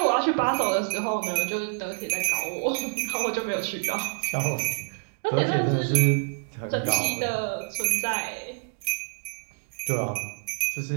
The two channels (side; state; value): left; silent; 60 dB below the other